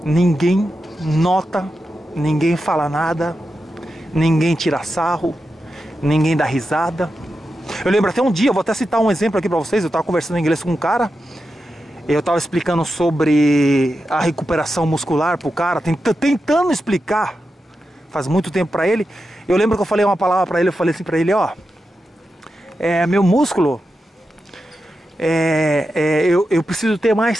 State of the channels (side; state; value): both; normal; correlation 0.89